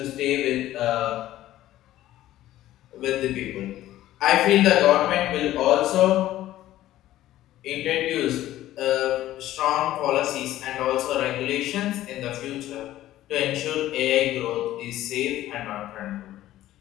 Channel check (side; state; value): right; quieter; 14.3 dB